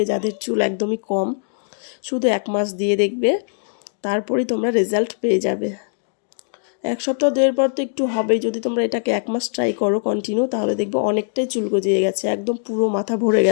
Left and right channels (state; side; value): silent; right; digital silence